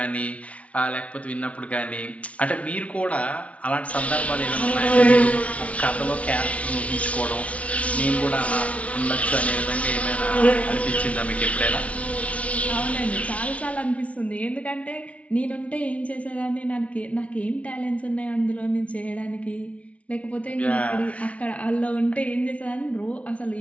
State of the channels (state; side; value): late; right; 0.064 ms